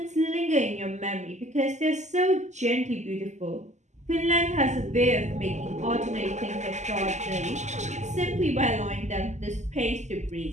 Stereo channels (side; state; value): left; late; 0.34 ms